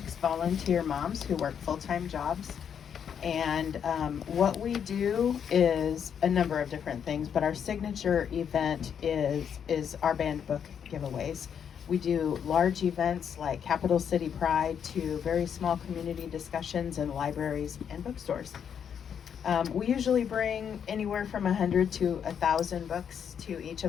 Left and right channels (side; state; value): right; quieter; 7.9 dB